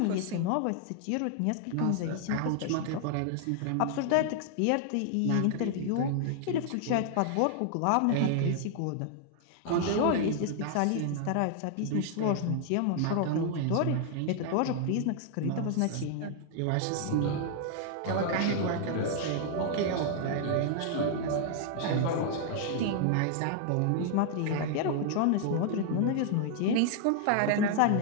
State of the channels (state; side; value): different; both; correlation 0.00